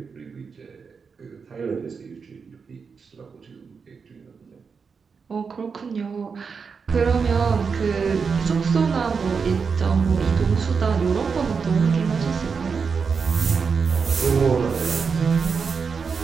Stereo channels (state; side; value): quieter; left; 5.5 dB